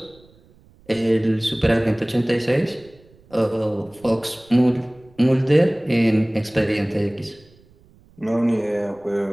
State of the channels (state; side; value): noise; right; rumble, 29 dB below the sound